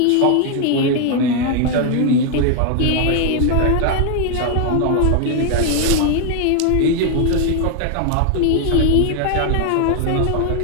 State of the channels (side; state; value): both; different; correlation 0.00